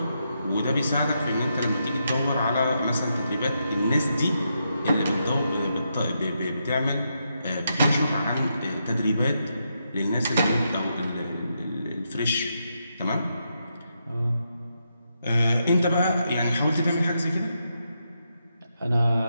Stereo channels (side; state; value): both; inverted; correlation -0.82